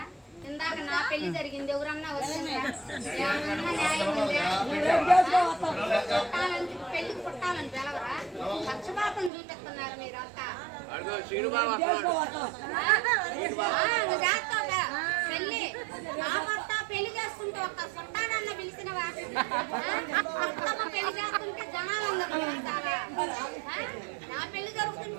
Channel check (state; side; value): drops out; left; at 9.3 s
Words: ఇందాక నా పెళ్లి జరిగింది, ఎవరన్నా వచ్చిండ్రా? ఏమన్నా న్యాయం ఉందా? పెళ్లికి చుట్టాలని పిలవరా? పక్షపాతం చూపిస్తున్నారు మీరంతా. పెళ్లి నా భర్త పెళ్లి చేసుకుంటే ఒక్క చుట్టాలన్న పిలిచినవా? బతుకమ్మ పెళ్లి చేస్తుంటే జనాలందరూ పిలుస్తారా? నా పెళ్లి